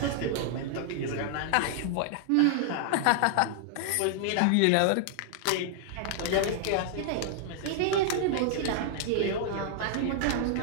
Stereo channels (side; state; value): both; different; correlation -0.01